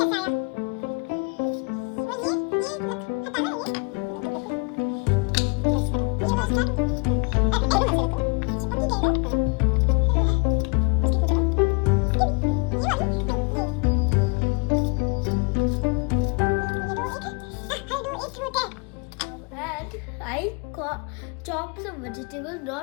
And I chop some vegetables,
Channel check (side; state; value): right; quieter; 32.1 dB